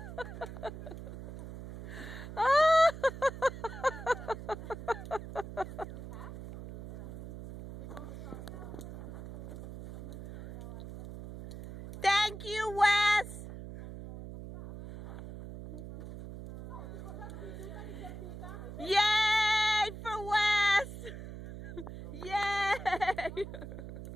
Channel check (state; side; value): noise; right; hum, 11 dB below the sound